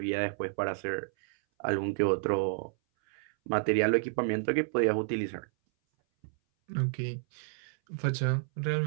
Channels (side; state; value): left; silent; 57 dB below the other